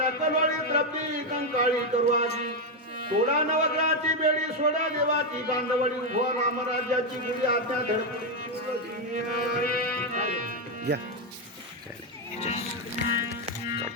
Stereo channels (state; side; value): normal; both; correlation 0.04